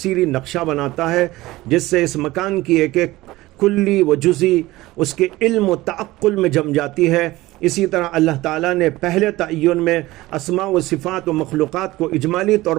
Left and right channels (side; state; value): left; quieter; 18.4 dB